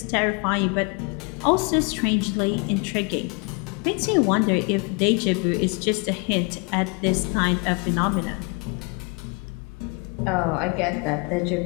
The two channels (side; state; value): right; quieter; 31.8 dB